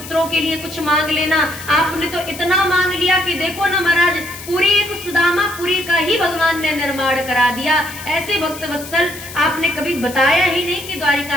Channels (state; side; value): noise; left; hiss, 13 dB below the sound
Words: के लिए कुछ मांग लेना, आपने तो इतना मांग लिया कि देखो ना महाराज पूरी एक सुदामापुरी का ही भगवान ने निर्माण करा दिया। ऐसे भक्त वत्सल आपने कभी बताया ही नहीं कि